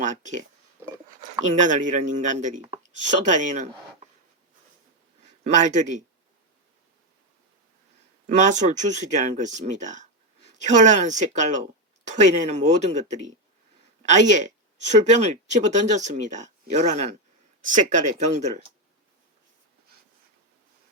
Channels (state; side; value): normal; both; correlation 0.07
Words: 악해. 인간을 잃은 인간들이 쏟아내는 말들이 마술 주술이라는 것입니다. 현란한 색깔로 토해내는 모든 것들이 아예 술병을 집어던졌습니다. 요란한 색깔의 병들을.